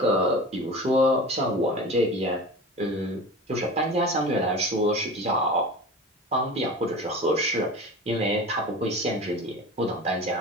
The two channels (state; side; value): normal; both; correlation 0.34